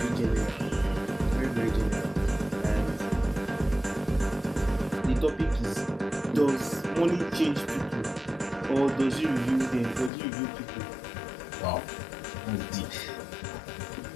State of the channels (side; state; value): right; drops out; at 10.1 s